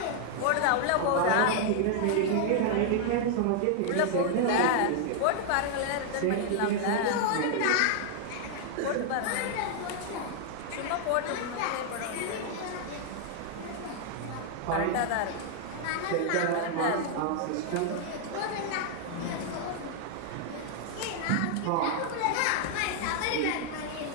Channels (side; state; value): both; different; correlation 0.00